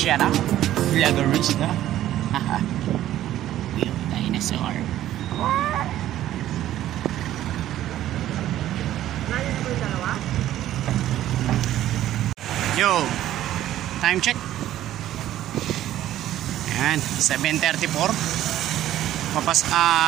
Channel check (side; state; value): left; quieter; 13.0 dB